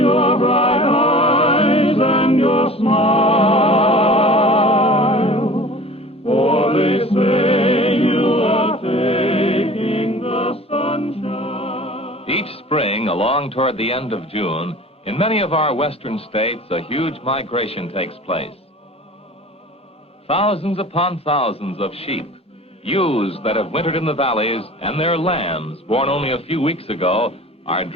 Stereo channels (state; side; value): normal; both; correlation 0.43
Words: bright eyes and your smile, for they say you are taking the sunshine. Each spring, along toward the end of June, in many of our western states, a huge migration takes place. Thousands upon thousands of sheep, ewes that have wintered in the valleys, and their lambs, born only a few weeks ago, are